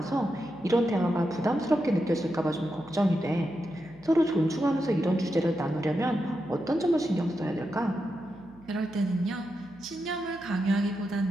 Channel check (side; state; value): right; noise; hum, 25 dB below the sound